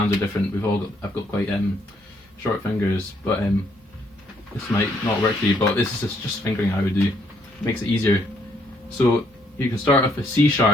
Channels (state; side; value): normal; both; correlation 0.70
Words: are different. I've got quite short fingers, but this might not work for you. But this is just fingering I would do. It makes it easier. So you can start off with C